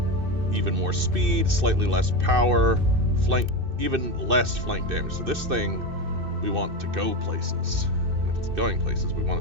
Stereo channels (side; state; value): left; late; 2.6 ms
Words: Even more speed, slightly less power, even less flank damage. So this thing, we want to go places. And if it's going places, we